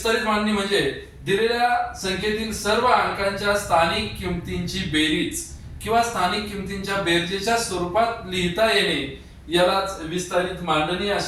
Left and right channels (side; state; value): both; identical; correlation 1.00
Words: मांडणी म्हणजे दिलेल्या संख्येतील सर्व अंकांच्या स्थानिक किमतींची बेरीज किंवा स्थानिक किमतींच्या बेरजेच्या स्वरूपात लिहिता येणे यालाच विस्तारित मांडणी